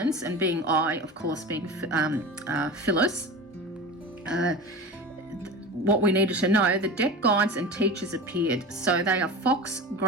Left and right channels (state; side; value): normal; both; correlation 0.31